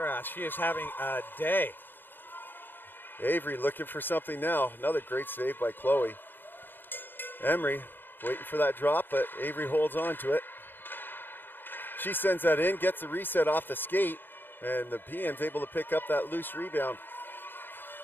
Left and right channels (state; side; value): late; right; 0.096 ms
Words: She is having a day. Avery looking for something now. Another great save by Chloe. Emery waiting for that drop, but Avery holds on to it. She sends that in, gets the reset off the skate, and the PM's able to pick up that loose rebound.